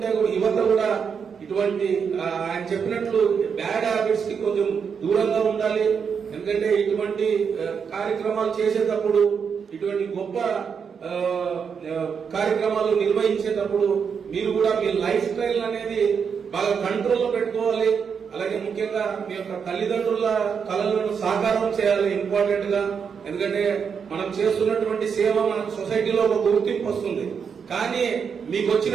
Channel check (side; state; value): left; quieter; 6.5 dB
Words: యువత కూడా ఇటువంటి ఆయన చెప్పినట్లు బ్యాడ్ హ్యాబిట్స్ కి కొంచెం దూరంగా ఉండాలి. ఎందుకంటే ఇటువంటి కార్యక్రమాలు చేసేటప్పుడు, ఇటువంటి గొప్ప కార్యక్రమాలు నిర్వహించేటప్పుడు మీరు కూడా మీ లైఫ్ స్టైల్ అనేది బాగా కంట్రోల్లో పెట్టుకోవాలి. అలాగే ముఖ్యంగా మీ యొక్క తల్లిదండ్రుల కళలను సాకారం చేయాలి ఇంపార్టెంట్ గా. ఎందుకంటే మనం చేస్తున్నటువంటి సేవ మనకు సొసైటీలో ఒక గుర్తింపు వస్తుంది. కానీ మీకు